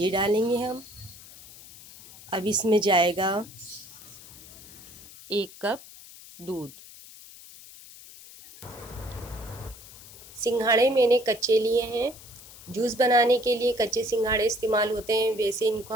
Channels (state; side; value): noise; left; hiss, 18 dB below the sound